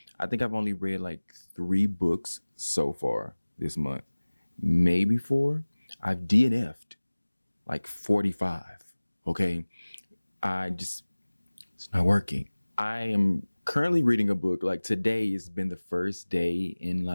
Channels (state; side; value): inverted; both; correlation -1.00